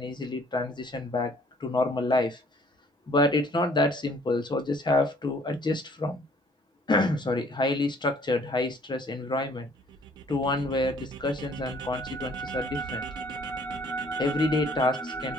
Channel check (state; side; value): normal; both; correlation 0.58